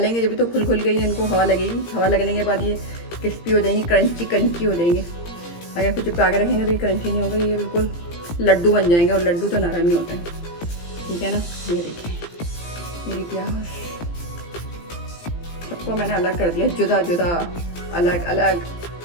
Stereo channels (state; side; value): late; right; 17 ms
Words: जब भी तो खुल के ही इनको हवा लगेगी, हवा लगने के बाद ये क्रिस्पी हो जाएंगी, क्रंची हो जाएंगे। अगर कुछ चिपका के रखेंगे तो ये क्रंची नहीं होगा, ये बिल्कुल लड्डू बन जाएंगे, और लड्डू तो नरम ही होते हैं, ठीक है ना। ये देखिए मेरी प्याज, सबको मैंने अलग कर दिया, जुदा जुदा, अलग अलग।